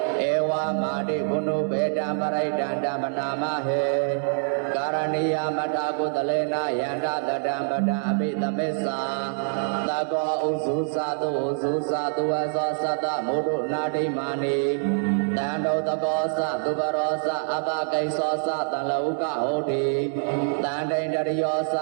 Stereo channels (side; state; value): left; silent; digital silence